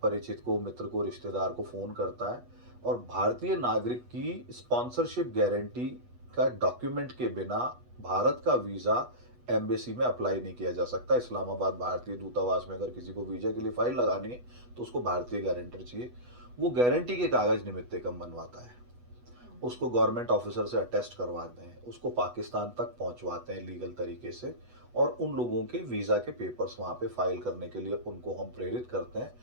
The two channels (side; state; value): left; late; 8.2 ms